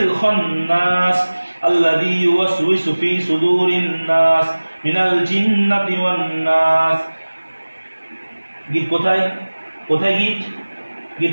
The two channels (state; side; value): inverted; both; correlation -1.00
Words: الذي يوسوس في صدور الناس من الجنة والناس গীত কোথায় কোথায় গীত গীত